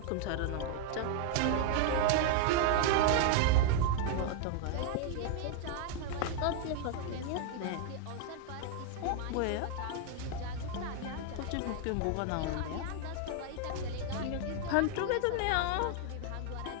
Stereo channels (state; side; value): different; both; correlation 0.00